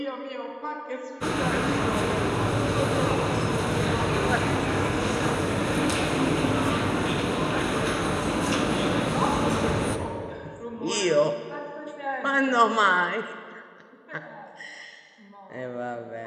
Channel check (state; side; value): identical; both; correlation 1.00